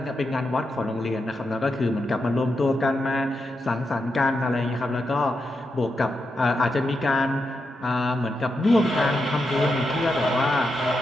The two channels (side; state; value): both; normal; correlation 0.85